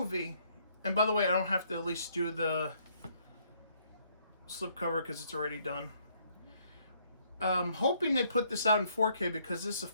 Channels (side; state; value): both; inverted; correlation -0.68